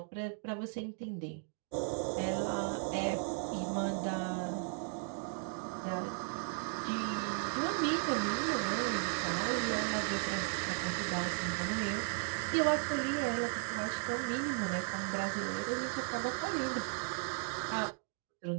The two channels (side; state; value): left; silent; 54 dB below the other